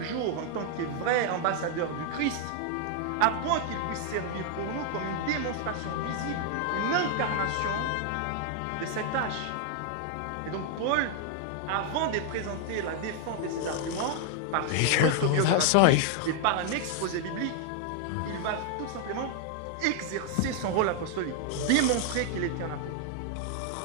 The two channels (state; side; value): different; both; correlation 0.00